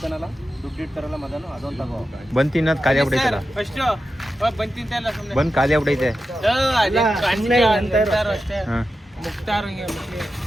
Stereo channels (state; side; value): normal; both; correlation 0.91